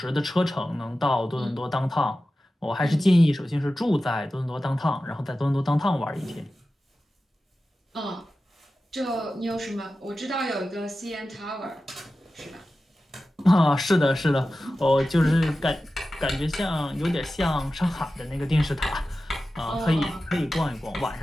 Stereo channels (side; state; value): both; normal; correlation 0.94